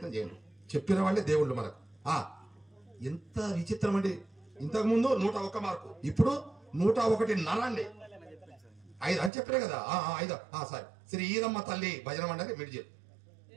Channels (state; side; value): drops out; left; at 9.3 s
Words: చేయండి. చెప్పిన వాళ్ళే దేవుళ్ళు మనకు. ఎంత విచిత్రం అండి. ఇంతకుముందు 101 మార్కు, ఇప్పుడు 101 నర అండి. 5 అని చెప్పారే కదా. 5 సారీ. శ్రీ ఈదమ్మ తల్లి భజన మండలి మిడ్జిల్.